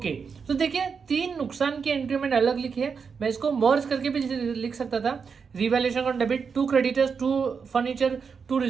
तो देखिए, 3 नुकसान की एंट्री मैंने अलग लिखी है, मैं इसको मर्ज करके भी लिख सकता था। Revaluation on debit, 2 creditors, 2 furniture, 2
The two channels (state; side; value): quieter; left; 5.9 dB